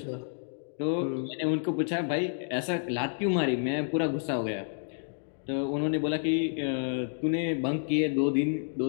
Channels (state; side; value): silent; right; digital silence